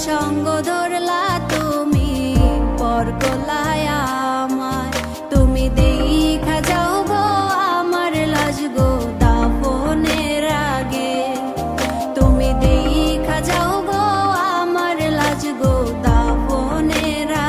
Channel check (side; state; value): both; identical; correlation 1.00